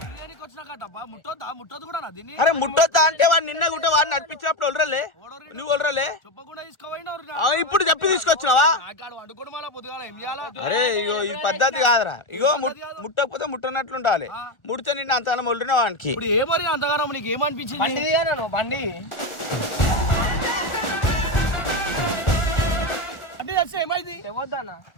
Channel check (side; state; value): right; late; 1.4 ms